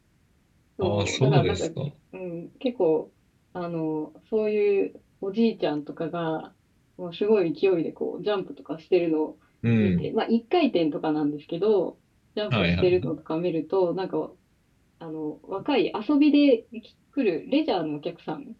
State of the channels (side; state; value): both; identical; correlation 1.00